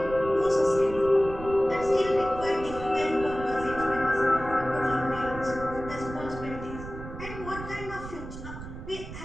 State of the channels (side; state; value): right; noise; rumble, 11 dB below the sound